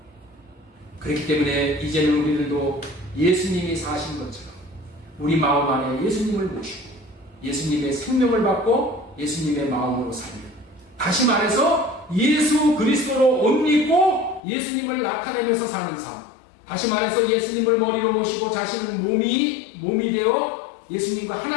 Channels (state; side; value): drops out; right; at 14.4 s